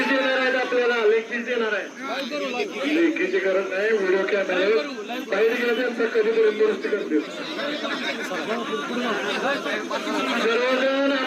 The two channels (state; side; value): identical; both; correlation 1.00